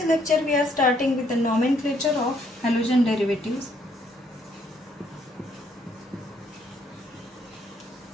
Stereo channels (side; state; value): both; normal; correlation 0.69